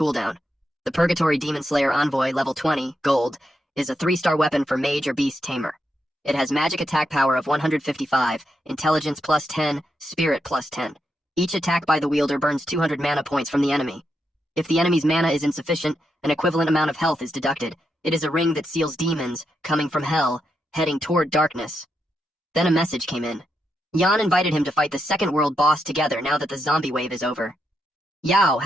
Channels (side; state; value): both; normal; correlation 0.83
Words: The Purgatory Demon Slayer Envoy, level 20, gold, is a 3-star weapon for mage or beast tamer. It has magic attack power of 155, intelligence plus 10, spirit plus 10. Each attack by the wielder burns 200 mana points from the enemy. If the enemy's mana is insufficient, an equivalent amount of health is deducted. It is a ring that seals demons, coming from hell, heading toward darkness. Then a message came in. Yan invited him to fight the second world boss together now that the zombie wave is over. Yao